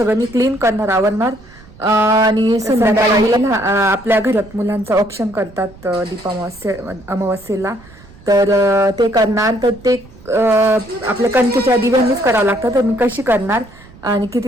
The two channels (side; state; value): right; noise; rumble, 23 dB below the sound